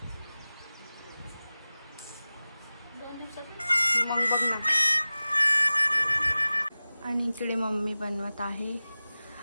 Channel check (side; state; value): both; inverted; correlation -0.96